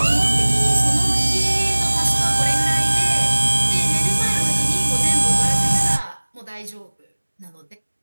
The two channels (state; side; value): inverted; both; correlation -1.00